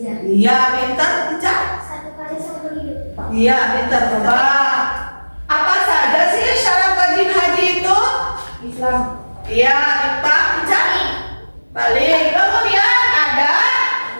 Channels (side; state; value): both; inverted; correlation -1.00